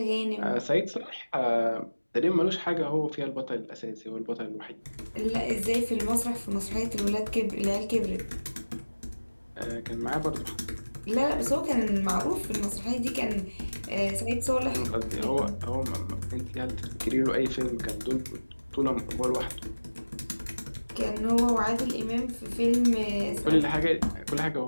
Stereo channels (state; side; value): inverted; both; correlation -1.00